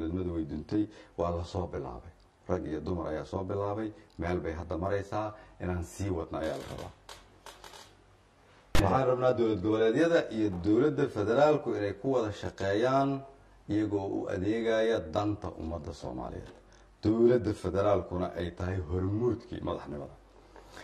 way duntay, waa la soo bilaabay, rag iyo dumar ayaa soo bilaabay, meel bay hadda maraysaa, inaan sii wadna ayaa la rabaa. waxaan rabnaa dowlad goboleedyada iyo dowladda federaalku inay ku wada shaqeeyaan iyagoo u adeegaya danta ummadda soomaaliyeed, dowladda federaalkuna ay tahay hormuudkii madaxnimada.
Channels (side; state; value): both; identical; correlation 1.00